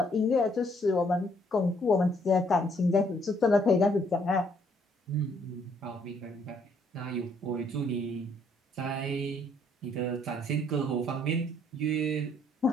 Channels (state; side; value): normal; both; correlation 0.67